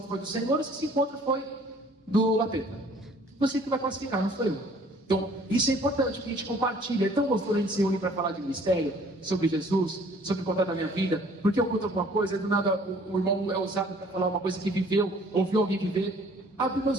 foi do Senhor ou se esse encontro foi do lapeta. Você que vai classificar, não sou eu. Então, isso é importante, que a gente compartilha. É tão gostoso a gente se unir para falar de ministério, sobre Jesus, sobre contar da minha vida. Porque eu conto alguma coisa, do nada o irmão é usado para falar uma coisa que viveu, ouviu alguém viver. Abre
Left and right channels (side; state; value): both; normal; correlation 0.56